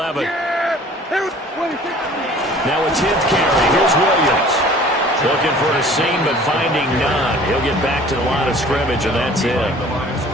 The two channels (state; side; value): normal; both; correlation 0.49